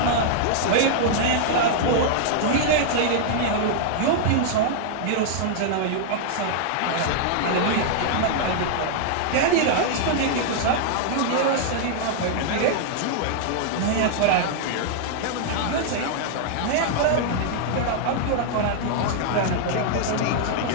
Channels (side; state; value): both; different; correlation -0.01